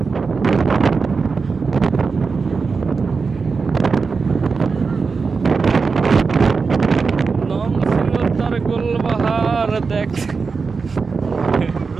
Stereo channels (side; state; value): left; quieter; 4.8 dB